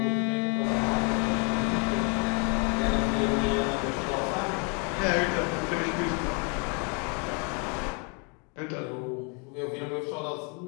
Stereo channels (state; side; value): quieter; right; 35.7 dB